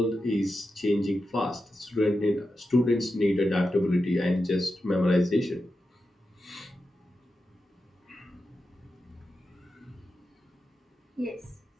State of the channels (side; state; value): both; normal; correlation 0.90